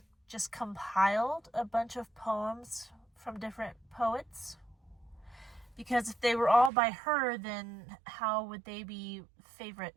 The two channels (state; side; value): drops out; left; at 6.7 s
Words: just compiled a bunch of poems from different poets? Because if they were all by her, then how would they be